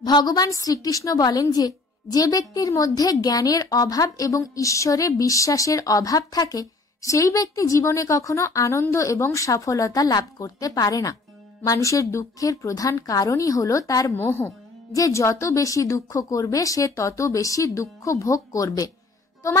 ভগবান শ্রীকৃষ্ণ বলেন যে, যে ব্যক্তির মধ্যে জ্ঞানের অভাব এবং ঈশ্বরে বিশ্বাসের অভাব থাকে সেই ব্যক্তি জীবনে কখনো আনন্দ এবং সফলতা লাভ করতে পারে না। মানুষের দুঃখের প্রধান কারণই হলো তার মোহ, যে যত বেশি দুঃখ করবে সে তত বেশি দুঃখ ভোগ করবে।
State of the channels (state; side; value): quieter; right; 3.5 dB